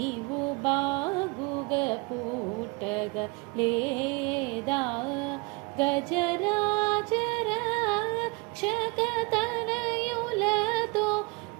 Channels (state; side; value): quieter; left; 28.0 dB